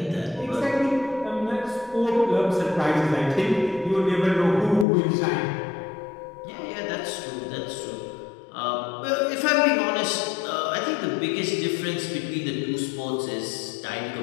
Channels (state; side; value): drops out; right; at 4.9 s